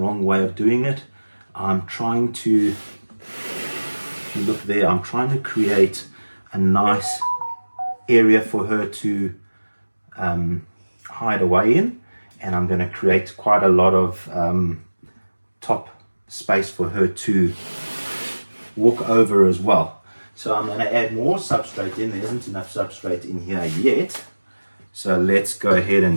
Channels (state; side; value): inverted; both; correlation -1.00